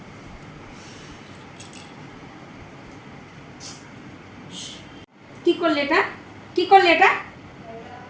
কি করলে এটা? কি করলে এটা?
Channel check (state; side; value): identical; both; correlation 1.00